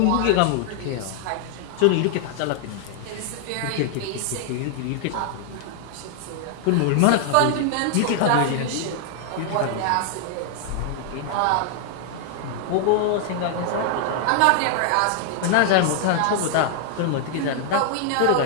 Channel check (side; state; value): both; different; correlation 0.00